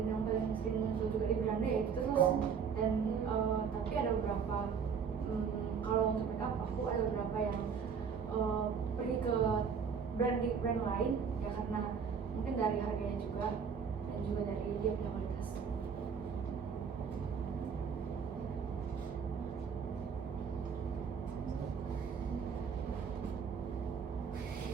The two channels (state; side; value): quieter; left; 6.5 dB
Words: yang paling sering muncul juga di brand ya itu terus. Dan tapi ada beberapa kalau untuk makeup aku ada beberapa yang pergi ke brand lain ya karena mungkin dari harganya juga dan juga dari dia punya kualitas.